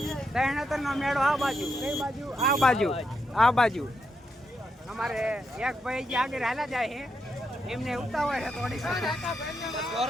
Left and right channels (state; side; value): normal; both; correlation 0.82